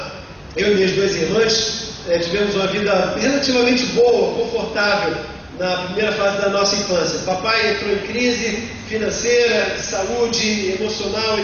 eu e minhas 2 irmãs, tivemos uma vida relativamente boa, confortável na primeira fase da nossa infância. Papai entrou em crise financeira, de saúde, emocional,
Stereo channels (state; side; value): identical; both; correlation 1.00